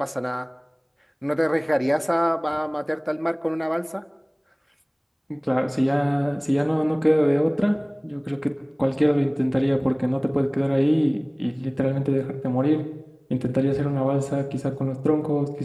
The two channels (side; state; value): both; identical; correlation 1.00